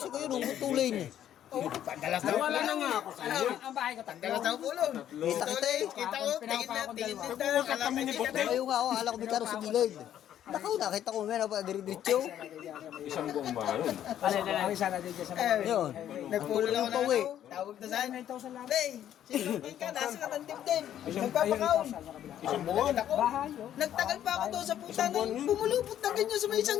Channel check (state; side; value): quieter; right; 10.9 dB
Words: ko yun. Tuloy niya. Wala na nga ako sa iyo. Ang bahay ko, tagdalas na ako ulo. Kita kita eh. Kita ko, tingin na tayo. Ayaw nga ako. Akala ko may karo sa gilid. Naku, nakita ko may napadiritso. Isang buong bahay yun. Ay, sana din dyan sa mga. Yun. Nagpulo ako pa na uwi. ano, tawag na saan. Hey, sinugin ka, nasa ka ng dimdim. Nagpapakaon. Isang buwan. Ako, nagtagal pa ako doon sa puta na pumulupot na ganyan sa may isang